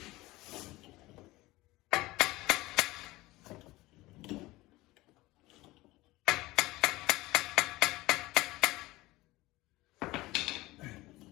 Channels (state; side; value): quieter; right; 19.4 dB